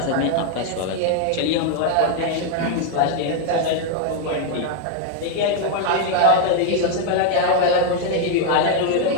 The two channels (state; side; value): different; both; correlation 0.00